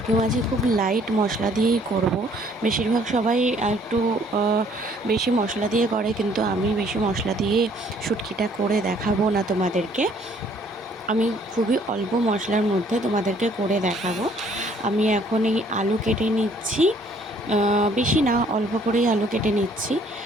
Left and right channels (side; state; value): both; normal; correlation 0.61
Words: মাছে খুব লাইট মশলা দিয়েই করব। বেশিরভাগ সবাই একটু বেশি মশলা দিয়ে করে, কিন্তু আমি বেশি মশলা দিয়ে শুটকিটা করে দেখাবো না তোমাদেরকে। আমি খুবই অল্প মশলার মধ্যে তোমাদেরকে করে দেখাবো। আমি এখন এই আলু কেটে নিচ্ছি, বেশি না, অল্প করেই আলু কেটে নিচ্ছি।